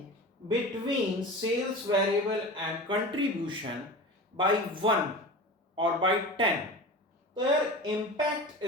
between sales variable and contribution by 1 or by 10, their impact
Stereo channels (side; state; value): both; normal; correlation 0.32